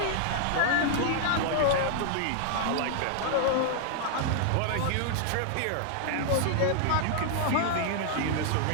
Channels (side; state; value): both; different; correlation -0.01